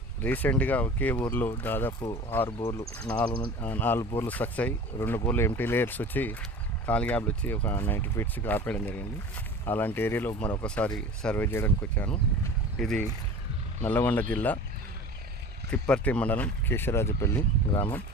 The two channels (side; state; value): both; normal; correlation 0.38